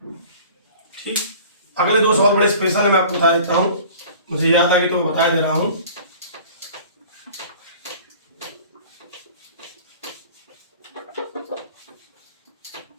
ठीक, अगले 2 सवाल बड़े स्पेशल है, मैं आपको बता देता हूँ, मुझे याद आ गई तो बता दे रहा हूँ।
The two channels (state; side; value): inverted; both; correlation -0.45